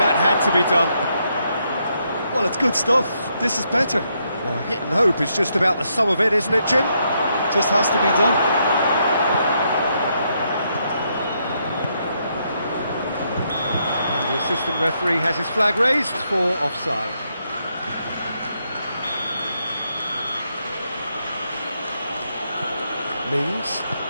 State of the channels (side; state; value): both; inverted; correlation -0.77